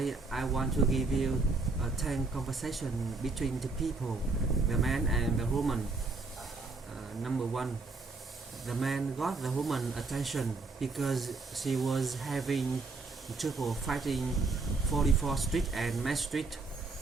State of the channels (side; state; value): left; quieter; 3.7 dB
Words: I want to give you a 10 conversation between two people, the man and the woman. Number one, the man got the woman attention because she was having trouble fighting 44th Street and Main Street.